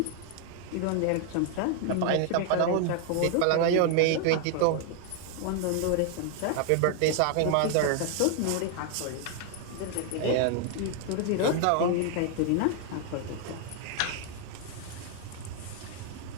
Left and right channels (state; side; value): different; both; correlation 0.00